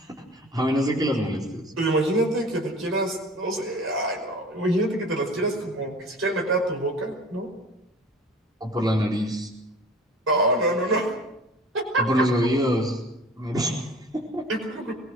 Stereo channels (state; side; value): normal; both; correlation 0.43